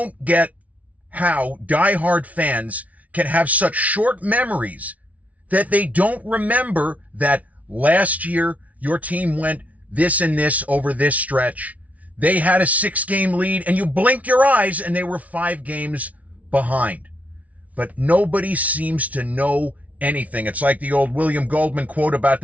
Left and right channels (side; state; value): left; late; 0.069 ms